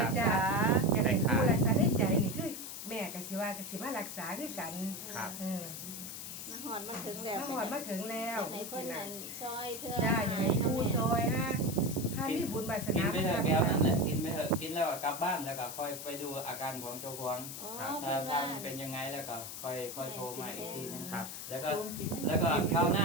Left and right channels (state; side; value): noise; left; hiss, 8 dB below the sound